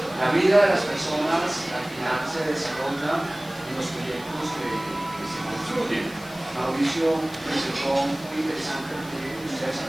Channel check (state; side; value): noise; left; hiss, 20 dB below the sound